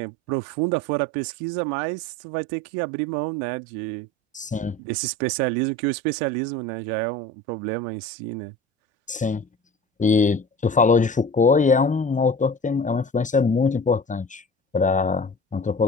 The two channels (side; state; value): both; normal; correlation 0.38